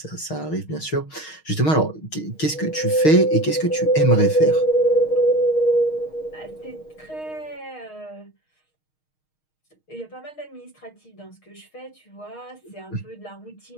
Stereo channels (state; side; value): late; right; 6.4 ms